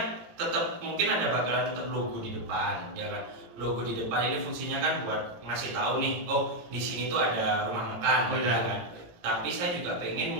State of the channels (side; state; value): left; late; 17 ms